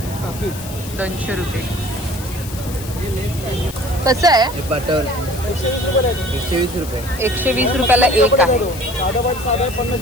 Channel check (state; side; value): noise; left; hiss, 14 dB below the sound